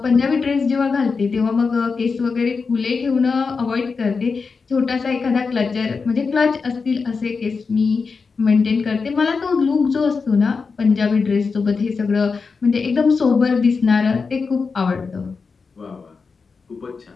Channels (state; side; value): quieter; right; 4.9 dB